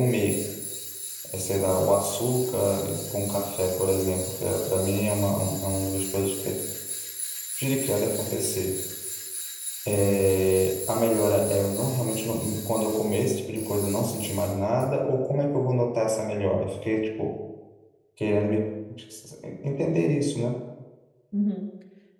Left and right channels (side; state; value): both; identical; correlation 1.00